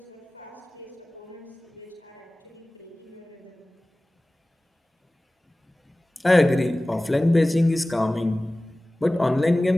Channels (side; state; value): both; normal; correlation 0.98